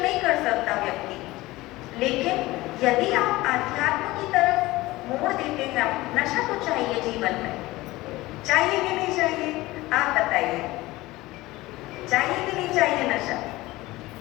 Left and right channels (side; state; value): right; quieter; 19.1 dB